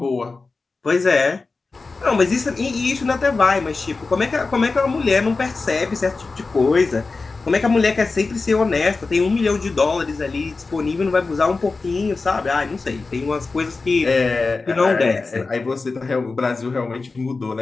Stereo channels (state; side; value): quieter; right; 4.0 dB